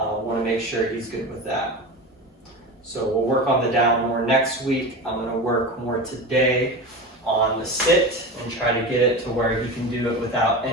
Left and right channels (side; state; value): both; normal; correlation 0.27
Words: to make sure he's good with that. So we'll work on the down more next week. I'm going to work more today on the sit and try to get it to where he can do it without